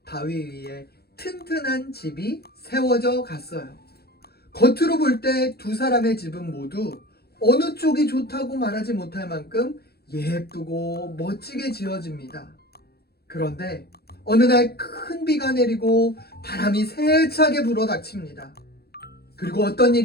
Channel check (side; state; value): right; late; 0.46 ms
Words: 바위 위에 튼튼한 집이 세워져 갔어요. 겉으로 볼 때 두 사람의 집은 모두 어느 쪽이 좋다고 말하지 못할 만큼 예쁘고 멋지게 지어집니다. 그런데 어느 날 큰 비가 내리고 바람이 세차게 불어닥칩니다. 그리고 어떤